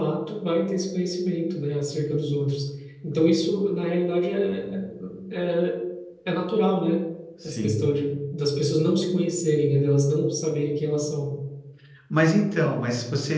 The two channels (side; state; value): both; identical; correlation 1.00